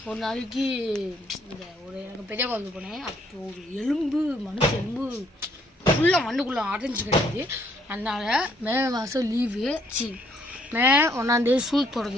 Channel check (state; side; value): normal; both; correlation 0.67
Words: ஒரு நாளைக்கு இந்த ஒரு எனக்கு பெரிய குழந்தை போனேன். அப்போ ஒரு மனுஷ எலும்பு ஃபுல்லாக மண்ணுக்குள்ளே அடைஞ்சு கிடையாது. அதனால் மே மாதம் லீவு மே 1ஆம் தேதி ஸ்கூல்